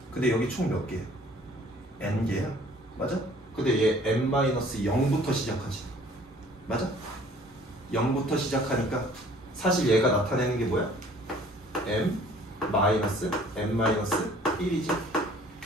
근데 여기 총 몇 개야? n개야. 맞아? 근데 얘 n-0부터 시작하지. 맞아? 0부터 시작하니까 사실 얘가 나타내는 게 뭐야? m-n-1이지.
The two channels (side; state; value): both; normal; correlation 0.54